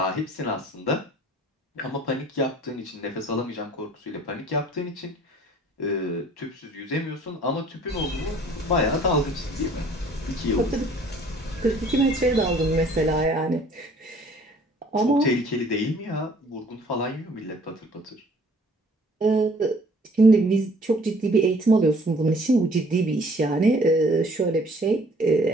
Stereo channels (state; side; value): normal; both; correlation 0.55